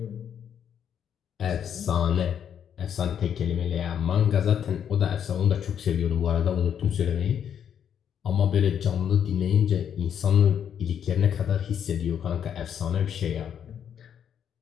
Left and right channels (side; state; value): right; quieter; 8.7 dB